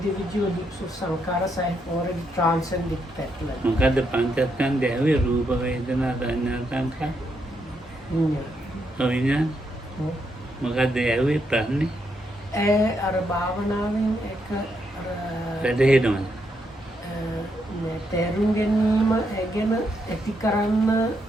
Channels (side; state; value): both; normal; correlation 0.79